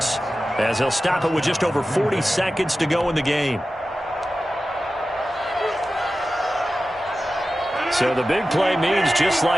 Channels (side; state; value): both; normal; correlation 0.94